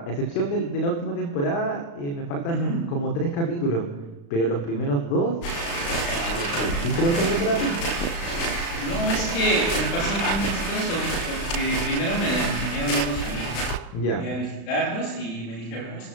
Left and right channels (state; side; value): late; right; 35 ms